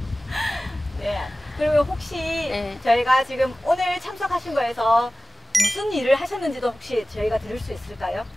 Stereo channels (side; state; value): both; normal; correlation 0.96